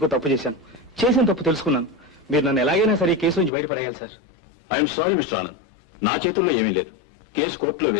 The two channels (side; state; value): right; drops out; at 3.5 s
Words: తప్పు చేశాను. చేసిన తప్పు తెలుసుకున్నాను. మీరు నన్ను ఎలాగైనా సరే ఈ కేసు నుంచి బయటపడేయాలి sir. I'm sorry mister Anand, నా చేతుల్లో ఏమీ లేదు. కేసు కోర్టులో